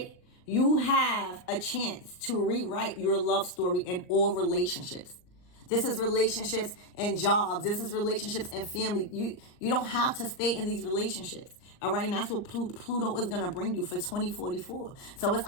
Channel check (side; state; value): right; late; 39 ms